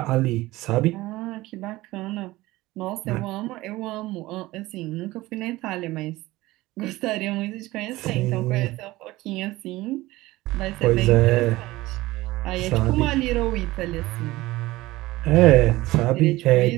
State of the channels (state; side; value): quieter; left; 18.6 dB